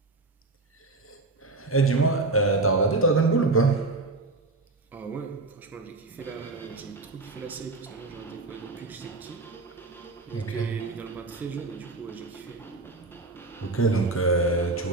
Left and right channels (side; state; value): left; quieter; 3.3 dB